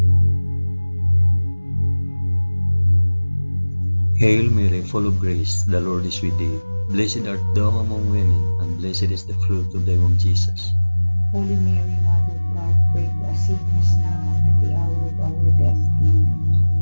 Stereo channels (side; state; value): both; inverted; correlation -1.00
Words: Hail Mary, full of grace, the Lord is with thee. Blessed art thou among women, and blessed is the fruit of thy womb, Jesus. Holy Mary, Mother of God, pray for us sinners now and at the hour of our death.